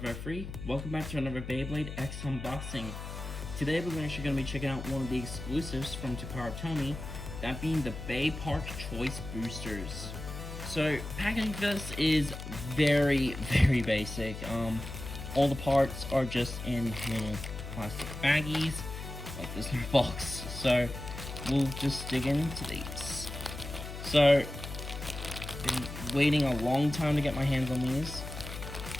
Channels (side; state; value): left; noise; hum, 9 dB below the sound